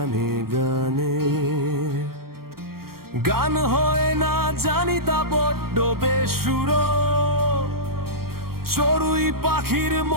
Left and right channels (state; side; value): late; left; 0.94 ms